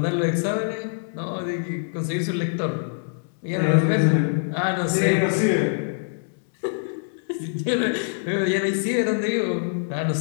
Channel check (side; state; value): right; silent; digital silence